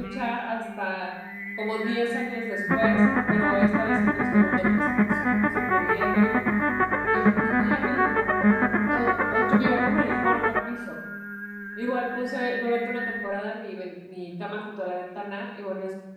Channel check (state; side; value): identical; both; correlation 1.00